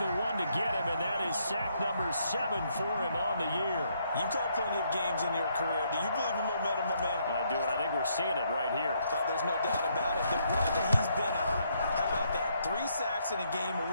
the one to get him, and that is sack number 7 for him on the year. You've called plenty of games in your career. Do you believe in momentum, my man? I do, and I think we're seeing it right here. Oh, there's no doubt about it. The run that he's been on. How about that? 3 sacks in a game a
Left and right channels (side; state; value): both; inverted; correlation -0.72